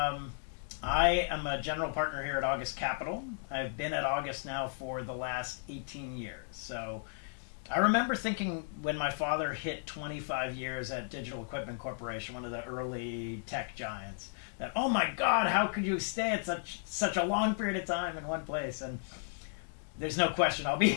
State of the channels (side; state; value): right; silent; digital silence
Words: I am a general partner here at August Capital. I've been at August now for the last 18 years. So I remember thinking when my father hit 25 years at Digital Equipment Corporation, one of the early tech giants, that, oh my God, how could you stay at such a long period of time in one place? And there's no question I'll be